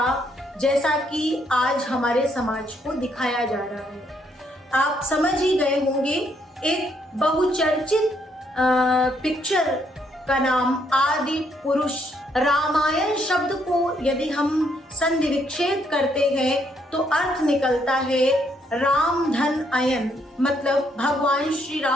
जैसा कि आज हमारे समाज को दिखाया जा रहा है। आप समझ ही गए होंगे, एक बहुचर्चित पिक्चर का नाम आदि पुरुष। रामायण शब्द को यदि हम संधि विच्छेद करते हैं तो अर्थ निकलता है राम धन अयन, मतलब भगवान श्री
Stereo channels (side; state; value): both; normal; correlation 0.72